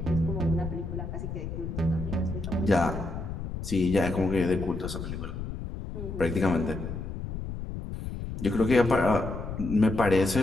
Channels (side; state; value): left; noise; rumble, 7 dB below the sound